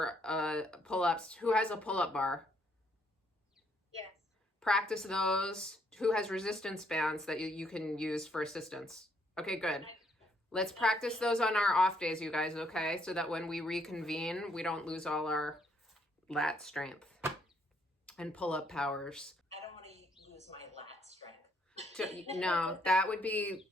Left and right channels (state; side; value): normal; both; correlation 0.70